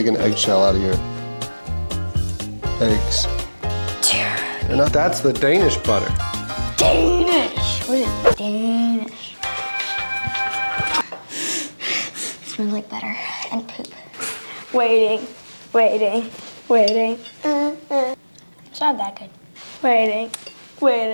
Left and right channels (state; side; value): inverted; both; correlation -1.00